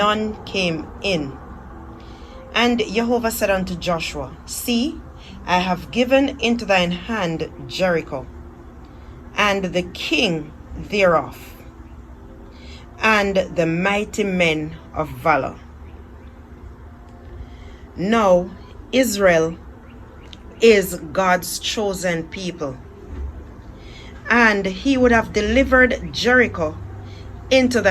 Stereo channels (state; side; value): identical; both; correlation 1.00